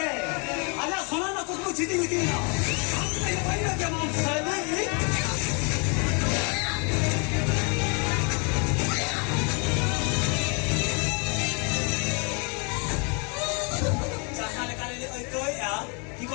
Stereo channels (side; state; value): right; quieter; 34.9 dB